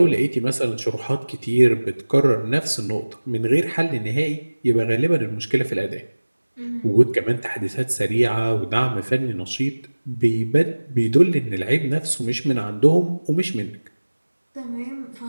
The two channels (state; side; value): inverted; both; correlation -1.00